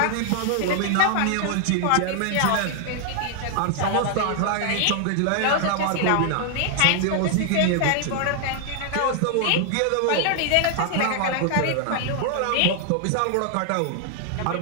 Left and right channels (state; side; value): different; both; correlation 0.00